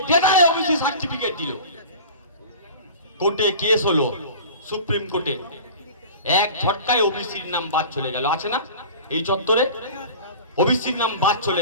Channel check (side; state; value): both; inverted; correlation -0.38